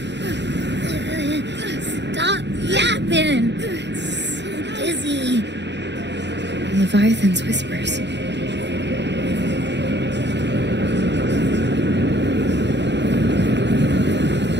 open. So dizzy. Leviathan's whispers.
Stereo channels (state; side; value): late; left; 0.51 ms